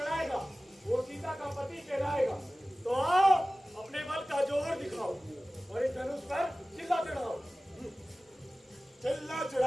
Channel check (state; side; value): normal; both; correlation 0.97